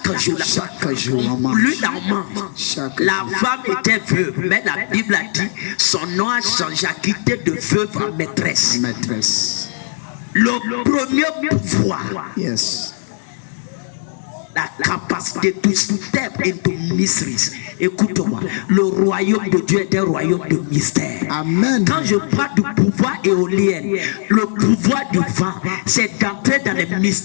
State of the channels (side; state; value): right; silent; 67 dB below the other